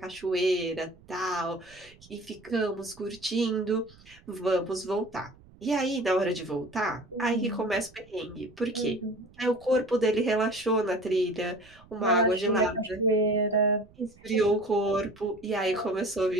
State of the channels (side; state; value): right; noise; rumble, 25 dB below the sound